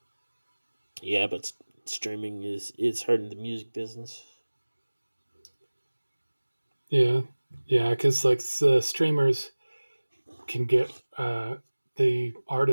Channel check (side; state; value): both; inverted; correlation -1.00